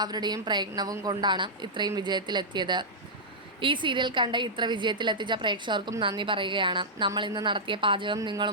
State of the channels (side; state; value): both; normal; correlation -0.10